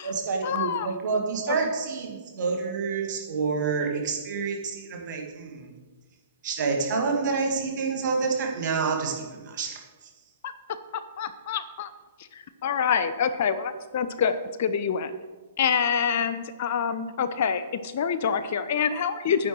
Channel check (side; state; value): both; inverted; correlation -0.49